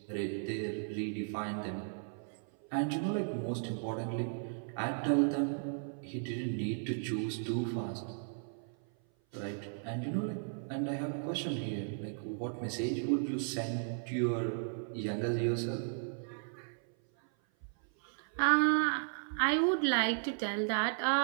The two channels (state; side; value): silent; left; 54 dB below the other